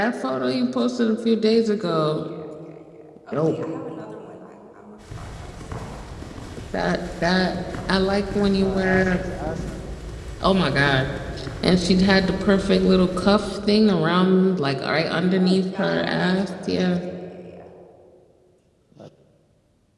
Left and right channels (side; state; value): both; identical; correlation 1.00